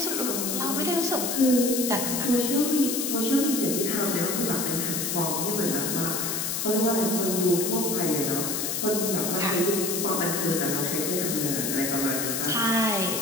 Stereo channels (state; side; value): noise; left; hiss, 1 dB below the sound